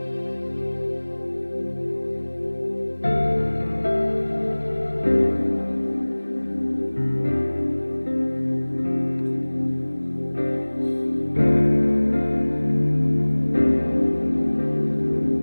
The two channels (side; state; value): both; inverted; correlation -1.00